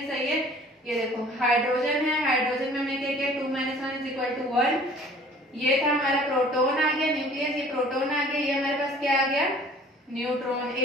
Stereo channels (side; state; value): both; normal; correlation 0.51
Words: सही है, ये देखो हाइड्रोजन है, हाइड्रोजन में हमने क्या किया, 2 - 1 = 1। ये था हमारा प्रोटॉन आ गया, न्यूक्लियस, ये प्रोटॉन आ गया, ये हमारे पास क्या आ गया, न्यूट्रॉन।